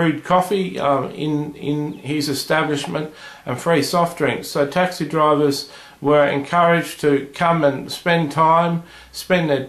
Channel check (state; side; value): identical; both; correlation 1.00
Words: coffee in his establishment, and free soft drinks. So taxi drivers were encouraged to come and spend their